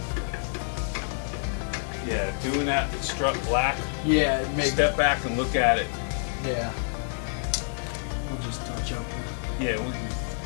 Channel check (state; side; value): silent; right; digital silence